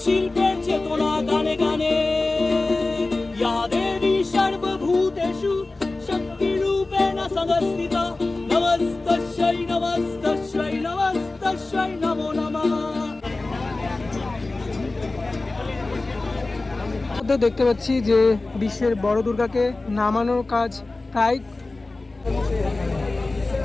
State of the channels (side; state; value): right; quieter; 3.2 dB